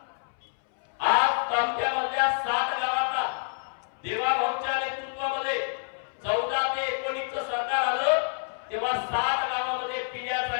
आज तालुक्यामधल्या 60 गावांना देवाभाऊंच्या नेतृत्वामध्ये 14 ते 19 सरकार आलं तेव्हा 60 गावामध्ये पिण्याचं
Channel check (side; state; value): right; silent; 60 dB below the other